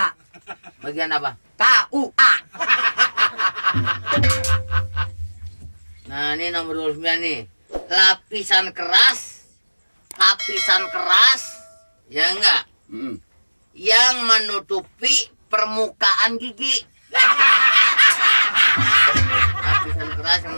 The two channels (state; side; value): inverted; both; correlation -1.00